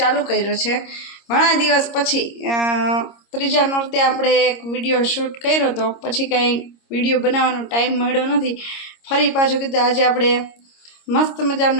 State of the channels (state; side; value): late; right; 26 ms